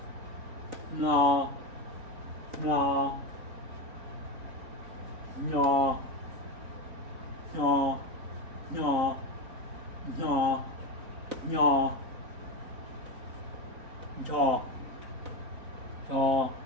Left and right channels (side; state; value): left; late; 4.0 ms